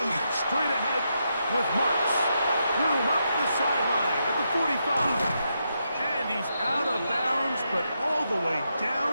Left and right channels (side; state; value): both; inverted; correlation -0.82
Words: straight ahead with Marks. Room up the sideline at the 45. And he's out of bounds, but all the way